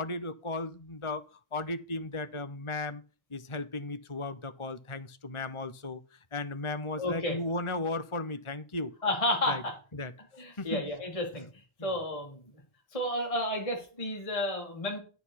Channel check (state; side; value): late; right; 1.4 ms